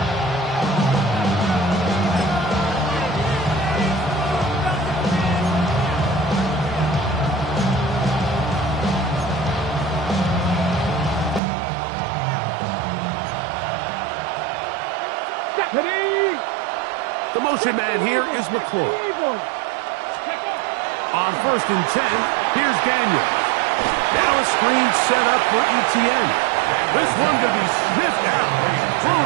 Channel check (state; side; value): drops out; left; at 11.4 s